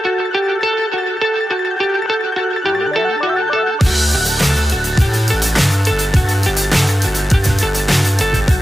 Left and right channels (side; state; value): both; normal; correlation 0.92